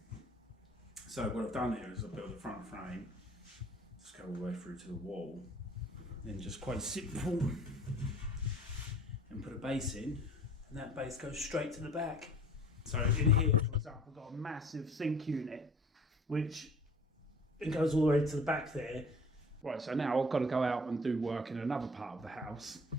So what I've done here is I've built the front frame, just go all the way through to the wall, then just quite simple, and put a base in, and that base goes straight to the back. So in here, for example, I've got a massive sink unit, which it goes all the way to the back there. Right, so now I've got to go out and do work in another part of the house.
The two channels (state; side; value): normal; both; correlation 0.48